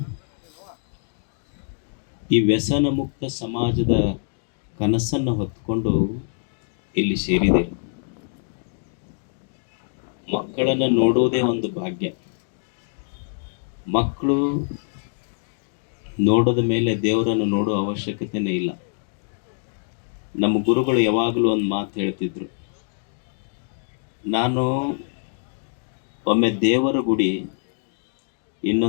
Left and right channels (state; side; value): silent; right; digital silence